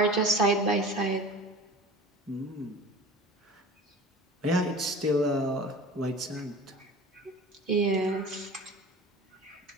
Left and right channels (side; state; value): both; normal; correlation 0.38